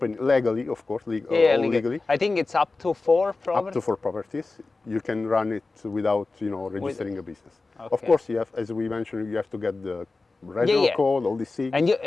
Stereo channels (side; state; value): right; quieter; 3.6 dB